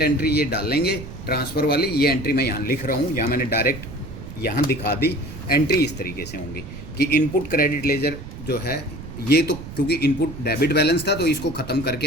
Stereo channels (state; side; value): noise; right; rumble, 12 dB below the sound